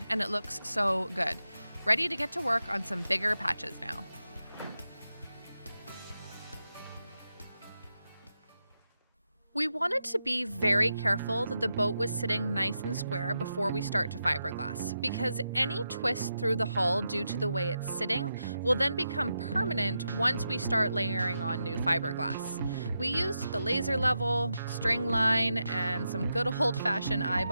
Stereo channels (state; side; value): inverted; both; correlation -0.87